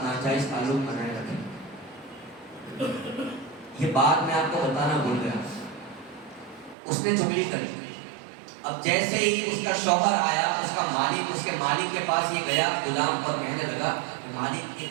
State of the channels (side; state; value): left; drops out; at 6.8 s